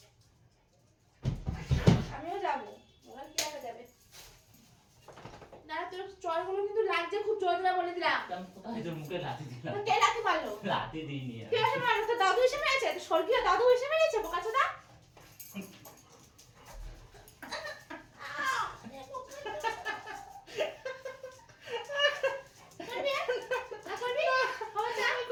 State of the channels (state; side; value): identical; both; correlation 1.00